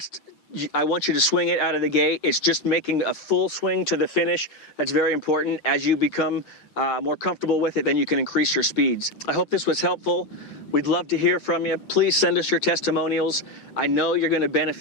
I want you to swing it out of the gate. It's just making a full swing to the finish. That's very important. As you become more comfortable with it, then you can increase your speeds. I hope this was helpful. We'd love to hear from you. Please send us your testimonials. I know you're going to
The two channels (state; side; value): late; right; 8.9 ms